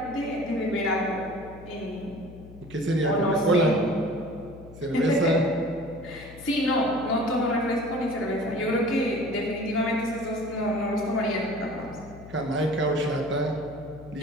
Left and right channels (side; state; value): left; noise; hum, 17 dB below the sound